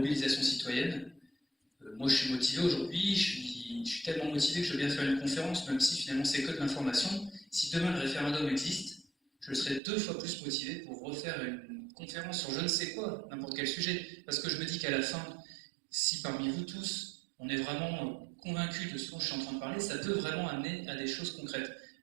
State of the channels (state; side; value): drops out; left; at 9.8 s